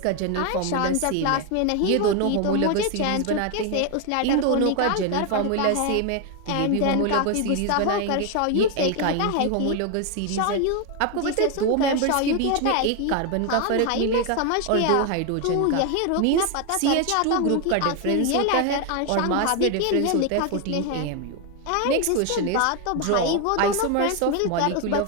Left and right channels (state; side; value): different; both; correlation 0.01